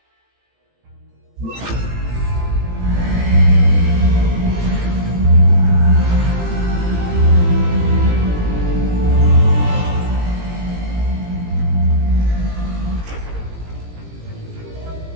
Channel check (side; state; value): left; late; 17 ms